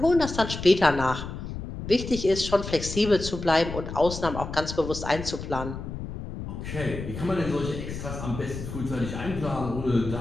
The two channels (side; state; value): left; noise; rumble, 8 dB below the sound